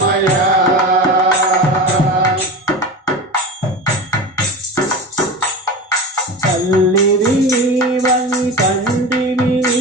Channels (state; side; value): normal; both; correlation 0.27